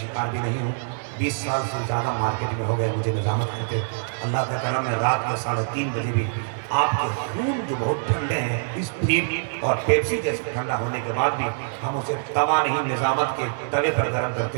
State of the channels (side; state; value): left; silent; 60 dB below the other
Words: شکار بھی نہیں ہوں۔ 20 سال سے زیادہ مارکیٹ میں ہو گئے مجھے نظامت کرتے، اللہ کا کرم ہے رات کے 3:30 بجے بھی آپ کے خون جو بہت ٹھنڈے ہیں، اس پھیپ اور پیپسی جیسے ٹھنڈا ہونے کے بعد بھی ہم اسے توا نہیں نظامت کے توے پر گرم